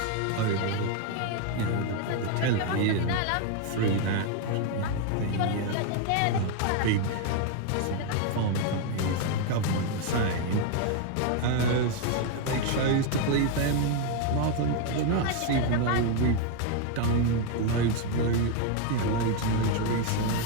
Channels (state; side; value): different; both; correlation 0.01